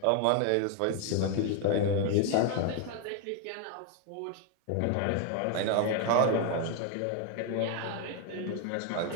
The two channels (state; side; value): different; both; correlation 0.01